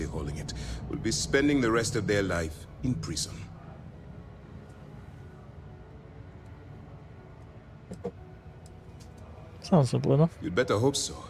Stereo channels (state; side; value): identical; both; correlation 1.00